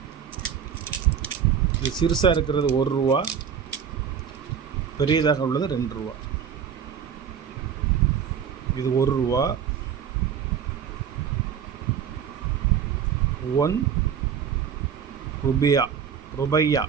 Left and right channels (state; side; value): quieter; left; 7.8 dB